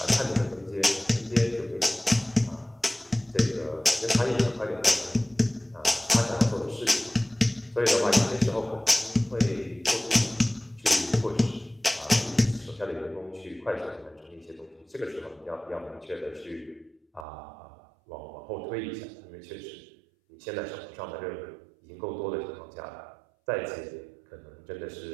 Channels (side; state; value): left; drops out; at 17.2 s